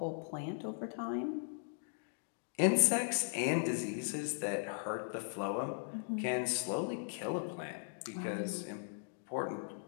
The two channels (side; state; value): right; silent; digital silence